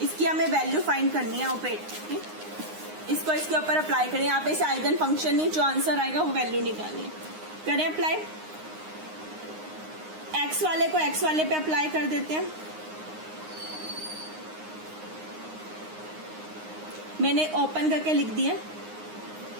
इसकी हमें वैल्यू फाइंड करनी है ऑपरेटर की। इसको इसके ऊपर अप्लाई करें। यहाँ पे इसे आइगन फंक्शन नहीं, जो आंसर आएगा वो वैल्यू निकालनी है। करें अप्लाई। एक्स वाले को एक्स वाले पे अप्लाई कर देते हैं। मैंने ओपन करके लिख दिया,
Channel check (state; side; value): late; left; 9.6 ms